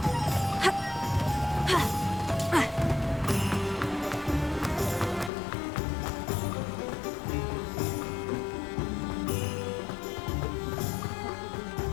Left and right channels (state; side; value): drops out; right; at 5.3 s